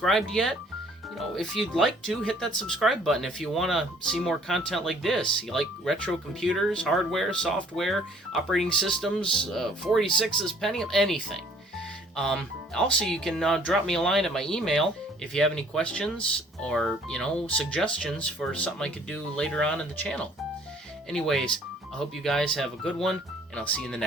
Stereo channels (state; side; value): normal; both; correlation 0.58